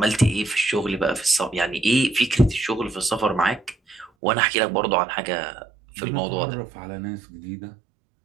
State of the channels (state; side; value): drops out; left; at 4.1 s